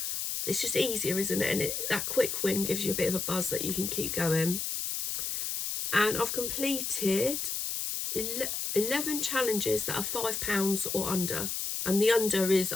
it's just easier, isn't it? And that quick win gives you a bit of a buzz that you can keep going. And I've completed 11 challenges that are £5 or under, and the under is,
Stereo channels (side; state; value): left; noise; hiss, 2 dB below the sound